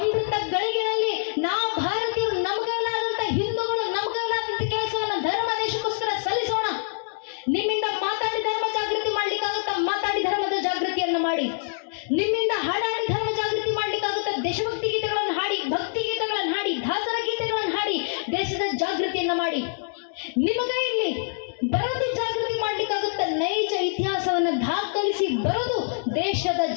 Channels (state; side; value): silent; right; digital silence